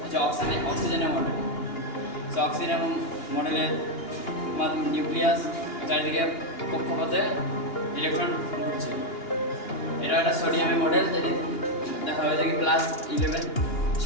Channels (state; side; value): late; right; 2.9 ms